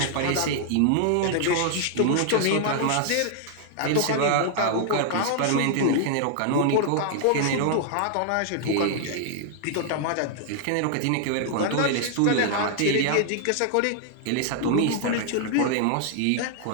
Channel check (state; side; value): different; both; correlation 0.00